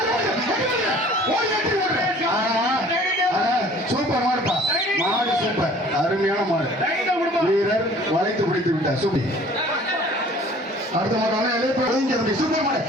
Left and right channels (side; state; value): both; normal; correlation 0.50